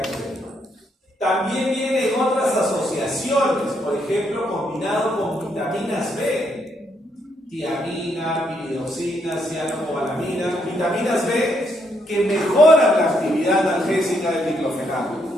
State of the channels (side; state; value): both; normal; correlation 0.75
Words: Perú. También vienen otras asociaciones, por ejemplo, combinado con vitaminas B, tiamina, piridoxina, cianocobalamina, vitaminas B que mejoran la actividad analgésica del diclofenaco.